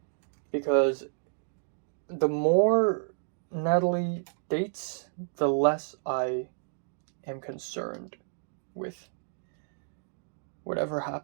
Because the more Natalie dates, the less I am concerned with whatever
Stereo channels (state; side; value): silent; left; digital silence